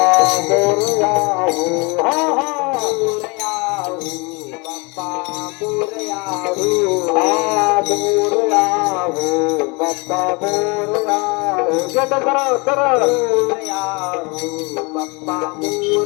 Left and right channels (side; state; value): right; quieter; 28.8 dB